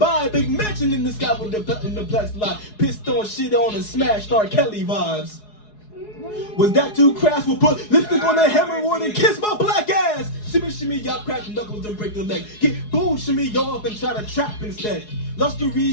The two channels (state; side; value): late; right; 4.8 ms